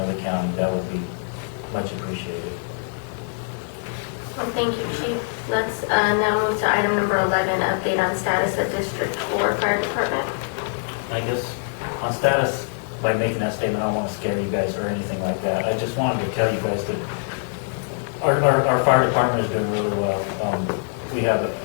the county. That would be much appreciated. Well, thank you, Chief. Let's now move to item number 11, update on status of District 4 Fire Department. I guess on status, by making that statement, I don't want to scare you guys or anything like that. I just wanted to tell you guys that our fire department is doing really well. We have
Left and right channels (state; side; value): silent; right; digital silence